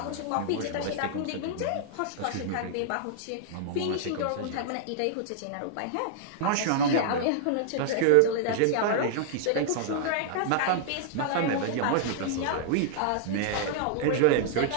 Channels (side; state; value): both; different; correlation -0.01